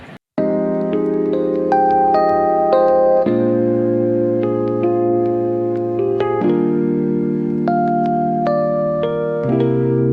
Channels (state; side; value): identical; both; correlation 1.00